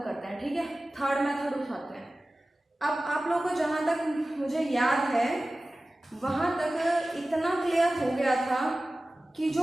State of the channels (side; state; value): both; normal; correlation 0.96